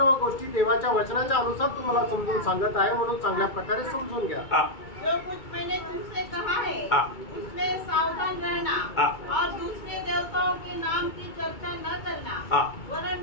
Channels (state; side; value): late; right; 2.2 ms